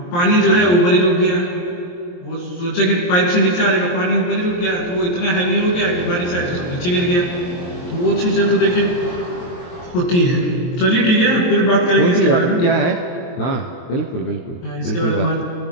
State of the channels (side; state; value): right; late; 23 ms